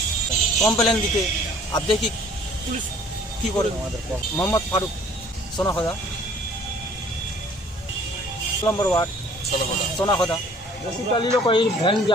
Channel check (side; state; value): both; normal; correlation 0.54